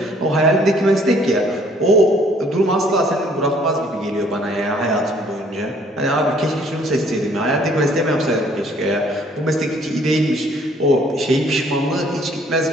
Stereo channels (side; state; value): both; normal; correlation 0.60